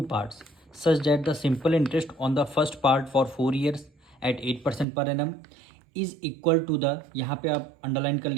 parts such that the simple interest on the first part for 4 years at 8% per annum is equal to the, यहाँ पे आप underline कर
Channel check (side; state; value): left; drops out; at 4.9 s